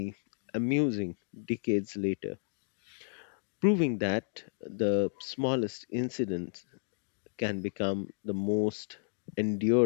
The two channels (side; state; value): right; silent; digital silence